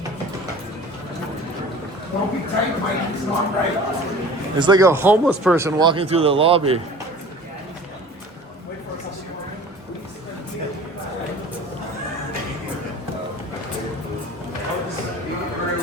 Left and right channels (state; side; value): normal; both; correlation 0.43